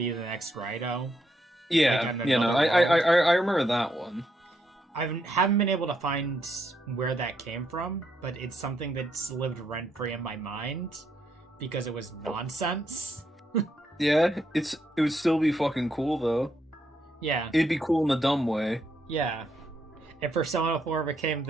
the next Raido. Yeah, Like, I remember that one. I haven't been able to find where that came from, but it's something that's lived rent-free in my mind because it was nonsense. Yeah, it would still be fucking cool though. Yeah. It'd be cool in a dumb way. Yeah. If Persona 4 became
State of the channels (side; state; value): both; normal; correlation 0.77